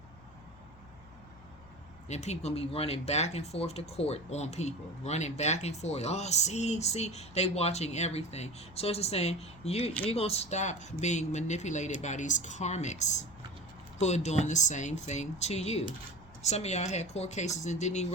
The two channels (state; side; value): noise; left; hum, 22 dB below the sound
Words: And people gonna be running back and forth to court on people, running back and forth. Oh, see, they watching everything. So it's just saying you're gonna stop being manipulated by these karmics who are doing the same thing to you. Some of y'all had court cases and didn't even